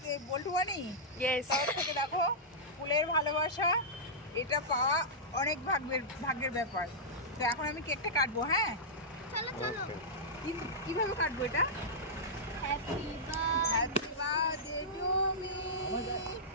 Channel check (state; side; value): normal; both; correlation -0.12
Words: বল্টু বানি? ইয়েস। তার থেকে দেখো ফুলের ভালোবাসা, এটা পাওয়া অনেক ভাগ্যের ব্যাপার। তো এখন আমি কেকটা কাটবো। হ্যাঁ, চলো চলো। কিভাবে কাটবো এটা? Happy happy birthday to me,